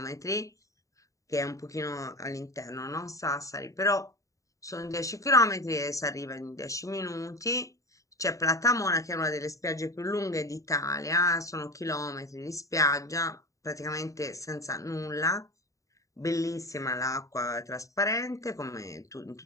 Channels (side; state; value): right; late; 0.16 ms